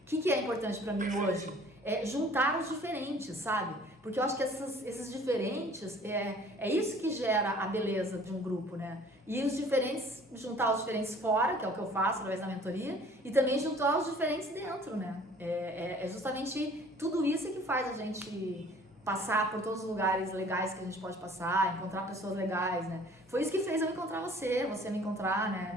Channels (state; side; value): normal; both; correlation 0.52